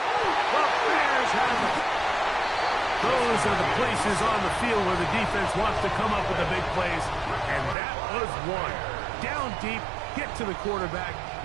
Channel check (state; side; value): drops out; left; at 7.8 s